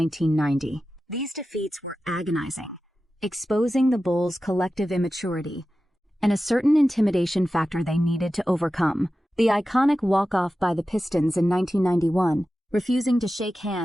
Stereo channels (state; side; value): normal; both; correlation 0.93